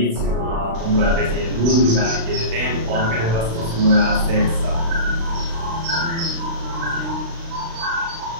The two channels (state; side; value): late; left; 36 ms